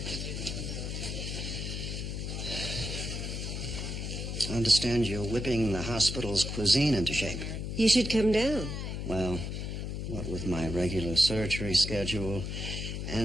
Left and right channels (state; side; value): noise; left; hum, 4 dB below the sound